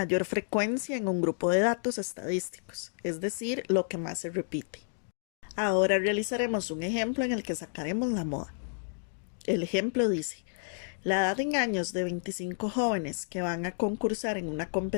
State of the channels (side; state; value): right; silent; digital silence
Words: frecuencia en un grupo de datos estadísticos, es decir, lo que más se repite. Ahora realizaremos un ejemplo en el que sacaremos la moda. El ejemplo dice, la edad en años de 25 jóvenes que van a concursar en una